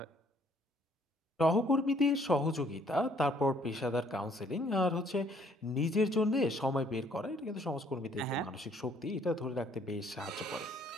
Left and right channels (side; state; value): both; normal; correlation 0.63